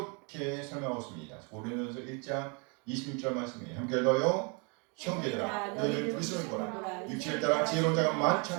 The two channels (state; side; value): quieter; left; 33.4 dB